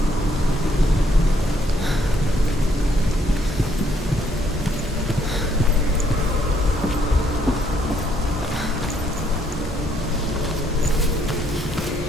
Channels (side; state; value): both; normal; correlation 0.70